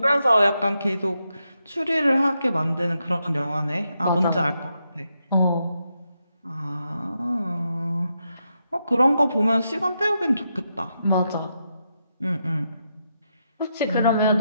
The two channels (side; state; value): both; inverted; correlation -0.83